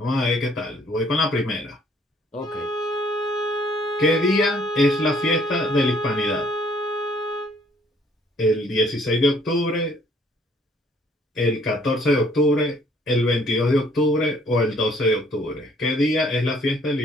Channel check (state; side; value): normal; both; correlation 0.62